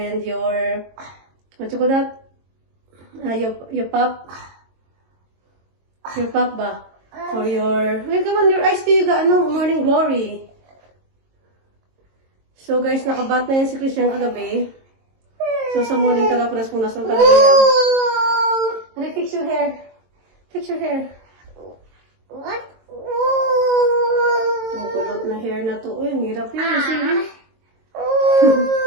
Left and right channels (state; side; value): late; left; 22 ms